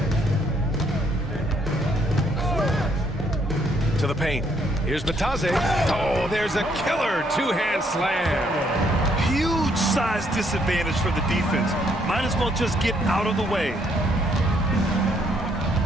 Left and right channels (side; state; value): both; normal; correlation 0.70